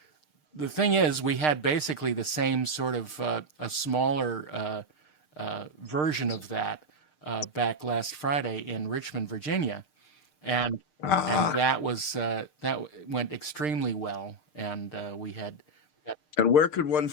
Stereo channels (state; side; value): late; right; 6.6 ms